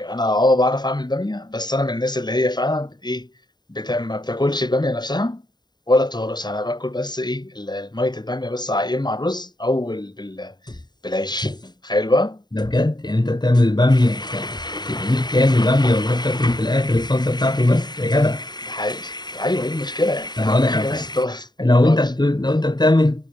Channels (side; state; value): right; late; 0.21 ms